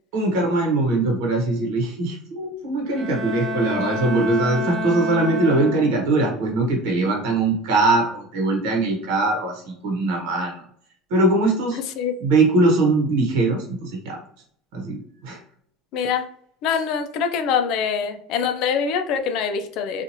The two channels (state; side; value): normal; both; correlation 0.36